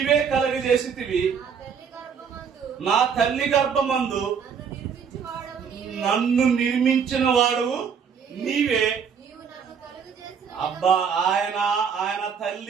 కలగజేసితివి. నా తల్లి గర్భమందు నన్ను నిర్మించిన వాడు నీవే. అబ్బా, ఆయన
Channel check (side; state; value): left; quieter; 6.8 dB